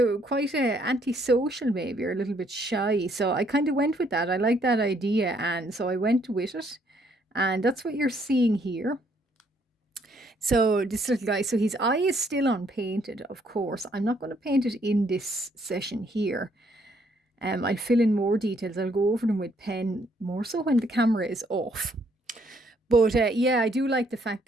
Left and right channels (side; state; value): both; normal; correlation 0.68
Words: were quite antisocial maybe, or a little bit shy. So I kind of went with that. I like that idea, and so I went with it. And that's what you're seeing here. So this little guy, so his eye is still unpainted, of course. I'm not going to paint it in this session here. I'll fill in more details. I'll go over them with pen, more so when the camera is off. But yeah, I do like the fact